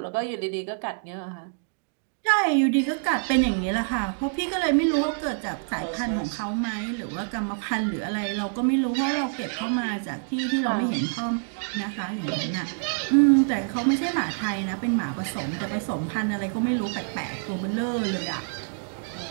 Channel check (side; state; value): left; silent; digital silence